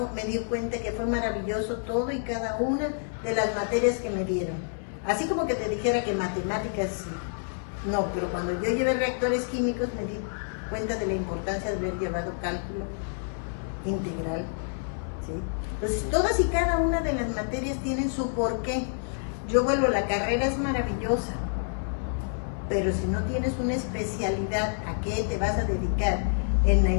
me di cuenta que fue maravilloso todo y cada una de las materias que me dieron. Así como que te dijera que matemáticas, no, pero cuando yo llevé reactores químicos me di cuenta de la importancia de haber llevado cálculo integral. ¿Sí? Pues todas y cada una de las materias tienen su porqué. Yo vuelvo, la carrera es maravillosa, pero si no tienes una especialidad a qué te vas a dedicar, en la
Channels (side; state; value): right; silent; 59 dB below the other